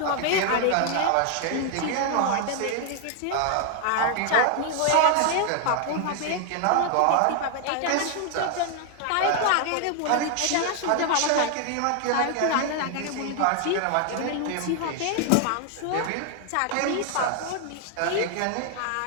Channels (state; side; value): different; both; correlation 0.00